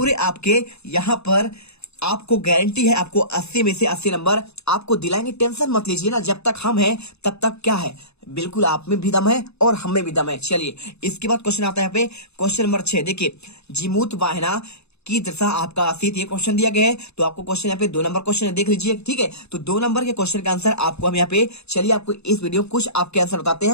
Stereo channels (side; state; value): right; late; 0.80 ms